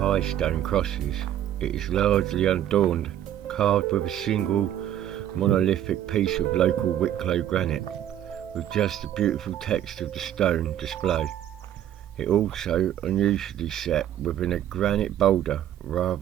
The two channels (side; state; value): left; quieter; 11.2 dB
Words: stone crosses, it is largely unadorned, carved with a single monolithic piece of local Wicklow granite, with just the beautiful text of the stone displayed. It also unusually set within a granite boulder